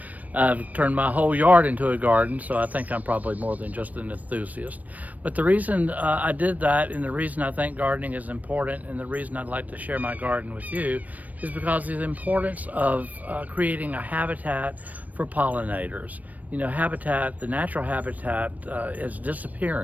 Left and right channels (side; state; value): left; late; 0.074 ms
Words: I've turned my whole yard into a garden, so I think I'm probably more than just an enthusiast. But the reason I did that, and the reason I think gardening is important, and the reason I'd like to share my garden with you, is because of the importance of creating a habitat for pollinators. You know, the natural habitat is